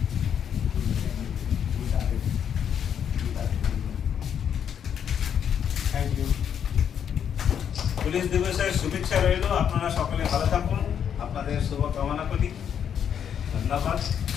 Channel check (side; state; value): right; quieter; 8.4 dB